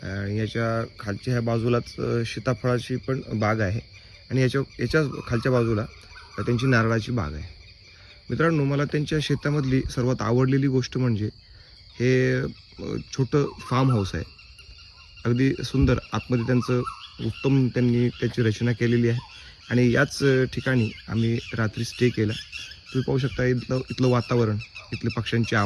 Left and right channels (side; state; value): both; identical; correlation 1.00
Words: आणि याच्या खालच्या ह्या बाजूलाच सीताफळाची पण बाग आहे आणि याच्या खालच्या बाजूला त्यांची नारळाची बाग आहे. मित्रांनो, मला त्यांच्या शेतामधली सर्वात आवडलेली गोष्ट म्हणजे हे छोटं फार्म हाऊस आहे. अगदी सुंदर आतमध्ये त्यांचं उत्तम त्यांनी त्याची रचना केलेली आहे आणि याच ठिकाणी आम्ही रात्री स्टे केला. तुम्ही पाहू शकता इथलं वातावरण, इथले पक्ष्यांचे